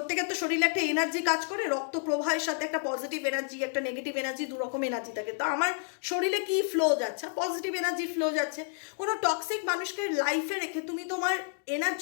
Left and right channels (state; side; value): silent; right; 56 dB below the other